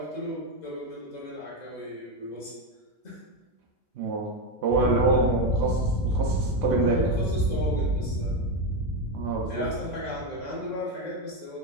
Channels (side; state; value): both; normal; correlation 0.10